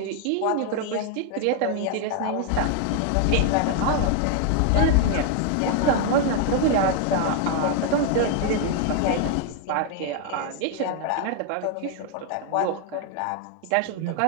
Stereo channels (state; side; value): different; both; correlation 0.00